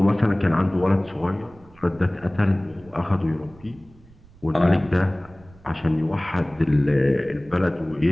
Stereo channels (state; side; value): noise; right; rumble, 25 dB below the sound